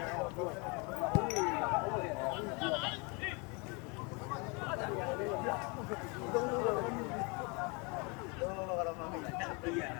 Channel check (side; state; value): right; quieter; 30.8 dB